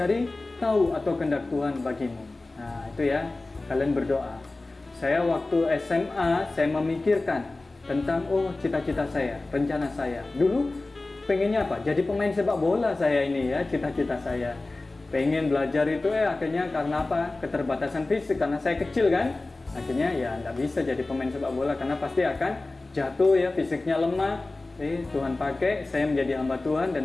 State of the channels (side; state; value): right; quieter; 3.1 dB